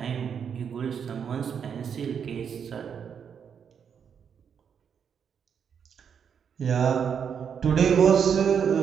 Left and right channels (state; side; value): quieter; left; 7.4 dB